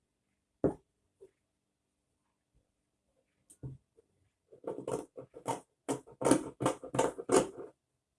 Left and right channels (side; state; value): both; identical; correlation 1.00